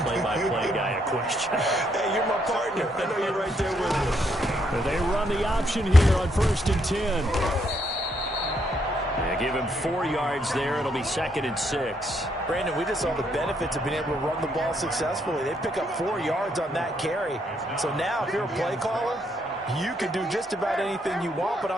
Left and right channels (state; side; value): normal; both; correlation 0.74